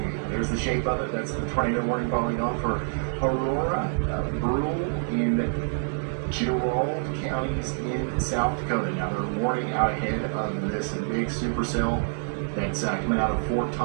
There's the shape of it. That's the tornado warning polygon for Aurora, Brule, and Gerald counties in South Dakota. Now they're warning out ahead of this big supercell that's coming out of Fort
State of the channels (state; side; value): silent; left; digital silence